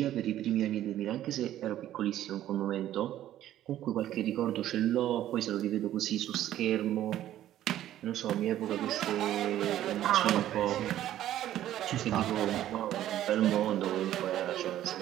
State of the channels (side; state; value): left; quieter; 12.6 dB